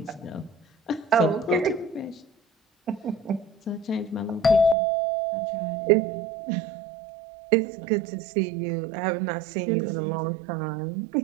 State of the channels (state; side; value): drops out; left; at 4.8 s